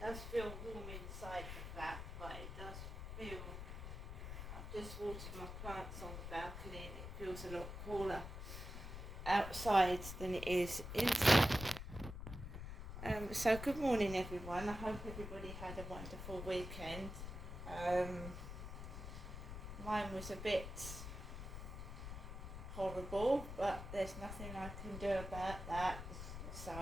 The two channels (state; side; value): noise; left; rumble, 8 dB below the sound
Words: It does feel warm inside the flat, but it does feel, I've just watered my plants on the balcony and it feels a lot cooler outside than it is inside. So good morning, everyone. I hope everybody had a wonderful weekend. Mine was a bit horrible, but there's nothing I can do about that, so